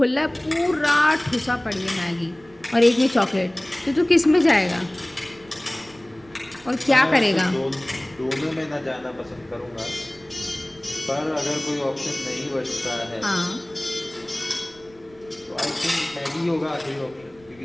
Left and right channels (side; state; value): right; noise; rumble, 27 dB below the sound